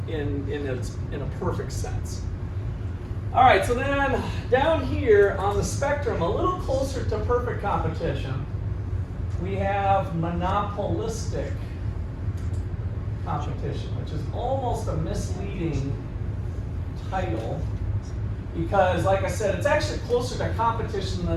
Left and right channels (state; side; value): identical; both; correlation 1.00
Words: in a perfect sense. All right, so then down here on the spectrum, a little closer to perfect competition, we have monopolistic competition, which is almost a misleading title because, like I said, it's actually closer to competition